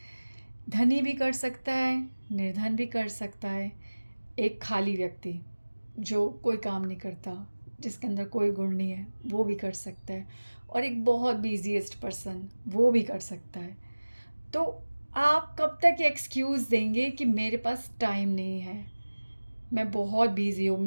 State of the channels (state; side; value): inverted; both; correlation -1.00